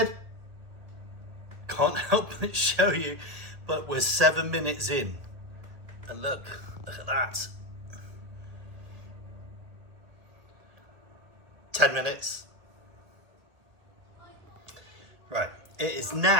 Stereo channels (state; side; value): late; left; 1.8 ms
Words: Can't help but show you, but we're 7 minutes in. And look at that. 10 minutes. Right, it is